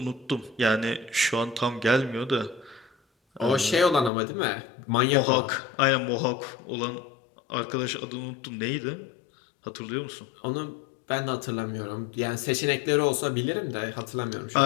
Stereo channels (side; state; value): right; drops out; at 4.1 s